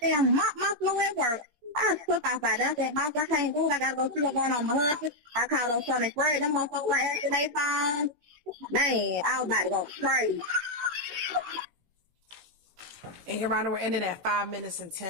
mop my floor at work. I was put outside there. I said, boss, I can't do it. I gotta go see what's going on with my husband. I called on Sunday Fred. Them motherfuckers were answering their phone. Man, I was about to go crazy. And Your Honor, we're ending at 5 minutes and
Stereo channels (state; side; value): late; left; 17 ms